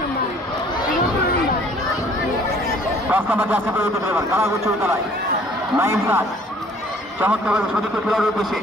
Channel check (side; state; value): both; normal; correlation 0.55